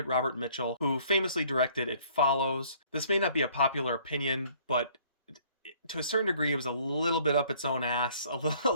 Robert Mitchell, who famously directed It Follows. This may not be a popular opinion, but to a certain degree, it was a little bit up its own ass, a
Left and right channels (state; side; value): inverted; both; correlation -0.58